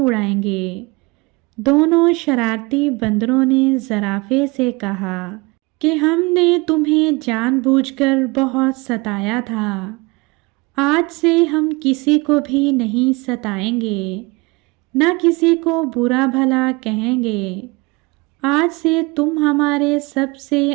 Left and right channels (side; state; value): left; quieter; 25.6 dB